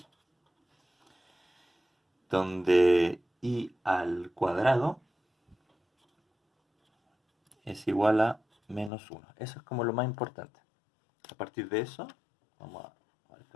donde i al cuadrado es igual a -1. Eso es como lo más importante. A partir de eso, vamos a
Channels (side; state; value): right; drops out; at 8.9 s